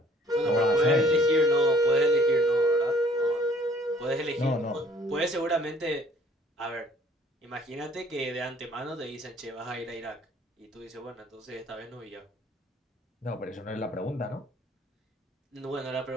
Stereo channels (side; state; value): both; normal; correlation 0.57